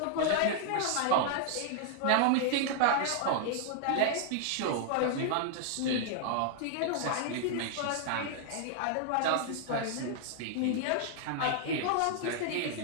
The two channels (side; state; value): both; different; correlation 0.00